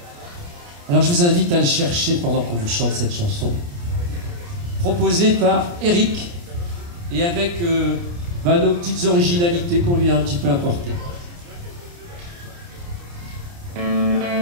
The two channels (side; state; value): left; late; 29 ms